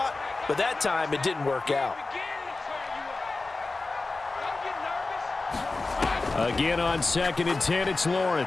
but that time it didn't work out. Again on 2nd and 10, it's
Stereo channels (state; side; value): quieter; right; 3.5 dB